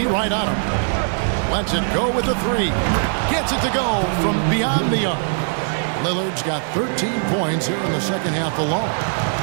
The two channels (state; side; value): silent; left; 61 dB below the other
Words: right on him. Lets it go with the 3. Gets it to go from beyond the arc. Lillard's got 13 points here in the second half alone.